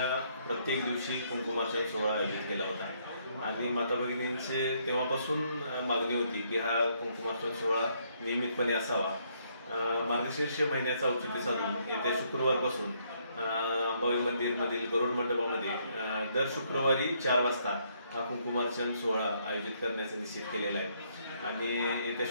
प्रत्येक दिवशी कुंकुमार्चन सोहळा आयोजित केला होता आणि माता भगिनींचे तेव्हापासून मागणी होती की हा कुंकुमार्चन सोहळा नियमितपणे असावा। मार्गशीर्ष महिन्याचा औचित्य साधून येत्या शुक्रवारपासून अंबाबाई मंदिरमधील गरुड मंडपामध्ये दर शुक्रवारी 4 वाजता हा कुंकुमार्चन सोहळा आयोजित करण्याचे निश्चित केलेला आहे आणि येत्या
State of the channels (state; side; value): inverted; both; correlation -0.71